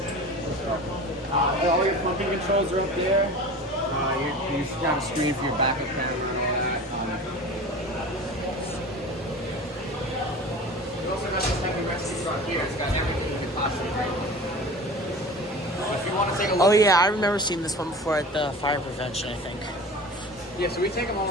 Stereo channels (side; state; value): both; normal; correlation 0.37